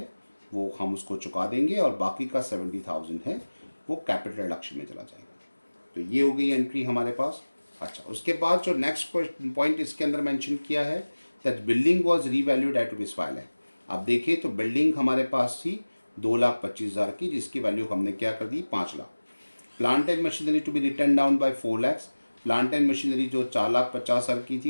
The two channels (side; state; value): both; inverted; correlation -1.00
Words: वो हम उसको चुका देंगे और बाकी का 70,000 है वो कैपिटल रिडक्शन में चला जाएगा। तो ये हो गई एंट्री हमारे पास। अच्छा, उसके बाद जो नेक्स्ट पॉइंट इसके अंदर मेंशन किया है that building was revalued at ₹5 lakh. आप देखिए तो बिल्डिंग हमारे पास थी 2,25,000 की, जिसकी वैल्यू हमने क्या कर दी 5 lakh. Plant and machinery to be written down by 4 lakh. Plant and machinery जो 4,50,000 की